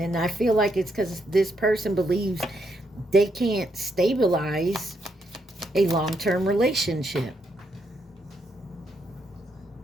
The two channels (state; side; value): normal; both; correlation 0.78